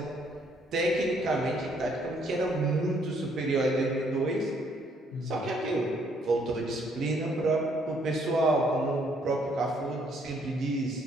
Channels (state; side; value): normal; both; correlation 0.67